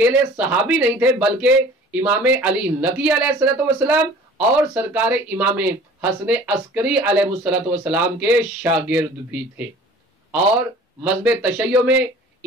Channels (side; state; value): both; normal; correlation 0.47